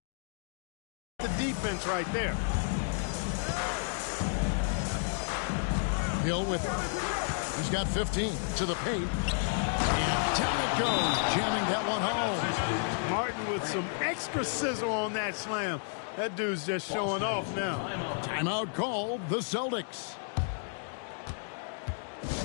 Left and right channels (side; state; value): right; silent; digital silence